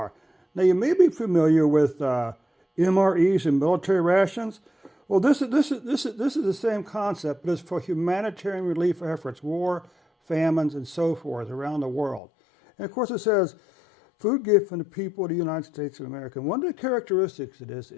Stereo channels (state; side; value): drops out; right; at 12.2 s